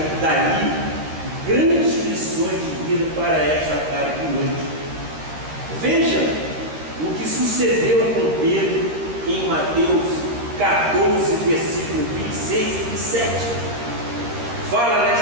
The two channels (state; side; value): late; left; 13 ms